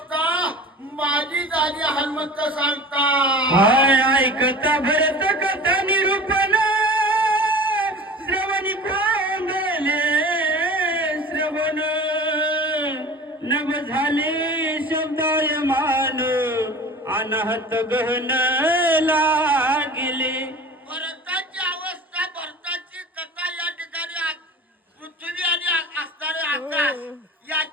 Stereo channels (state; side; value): normal; both; correlation 0.38